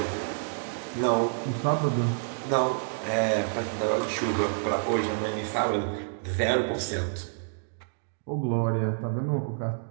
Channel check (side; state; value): left; silent; digital silence